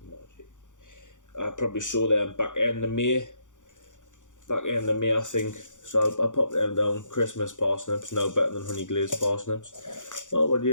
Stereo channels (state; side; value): late; right; 0.86 ms